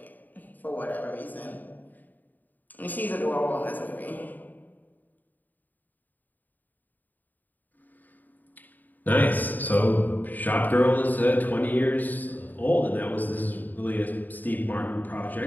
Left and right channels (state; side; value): late; right; 0.085 ms